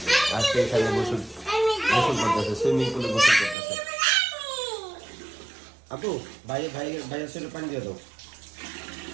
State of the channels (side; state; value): left; drops out; at 3.6 s